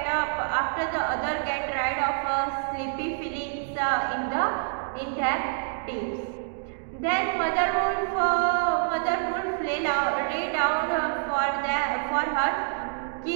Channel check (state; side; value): silent; left; digital silence